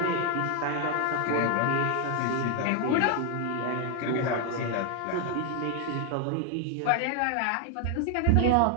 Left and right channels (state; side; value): different; both; correlation 0.00